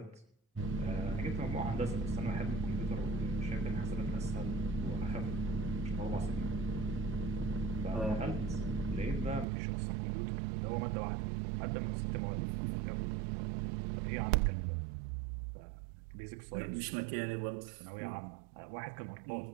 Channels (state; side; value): drops out; left; at 9.5 s